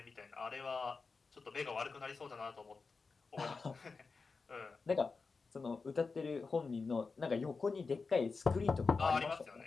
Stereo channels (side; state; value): right; quieter; 4.5 dB